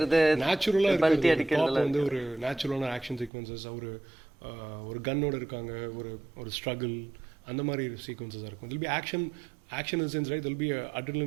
நேச்சுரலா பல்டி இருக்கு. அடிக்கிறதுல வந்து ஒரு நேச்சுரலான ஆக்ஷன் சீக்வன்சஸ், ஒரு கன்னோட இருக்காங்க, ஒரு ஸ்ட்ரகிள், அந்த மாதிரி சீக்வன்சஸ் இருக்கும். It'll be action in sense right, it'll be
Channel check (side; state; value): left; drops out; at 3.3 s